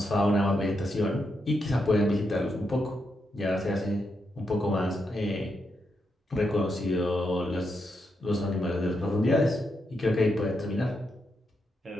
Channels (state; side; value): normal; both; correlation 0.83